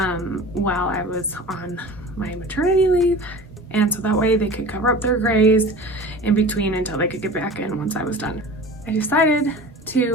while I was on my maternity leave, and so that way they could cover up their grays in between until they could get back in once I was done. I decided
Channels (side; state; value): both; normal; correlation 0.37